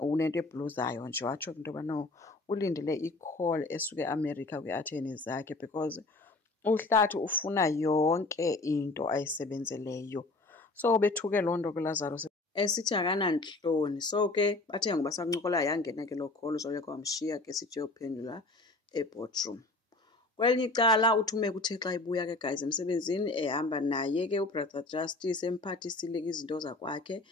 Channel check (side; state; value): right; quieter; 3.2 dB